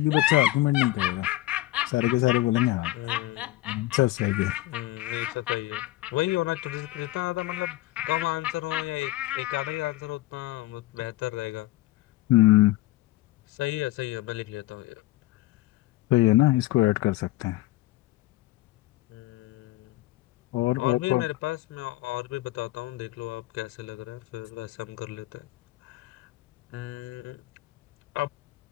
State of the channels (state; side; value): quieter; right; 17.4 dB